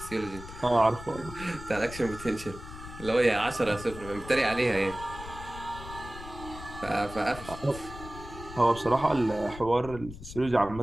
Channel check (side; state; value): left; noise; rumble, 13 dB below the sound